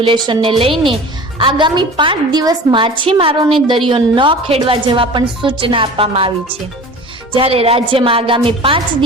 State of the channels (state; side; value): normal; both; correlation 0.39